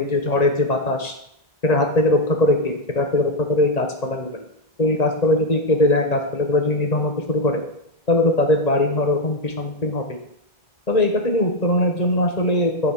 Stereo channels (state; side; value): late; right; 1.9 ms